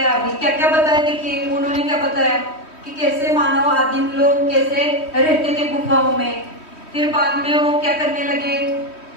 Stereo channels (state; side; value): late; right; 3.1 ms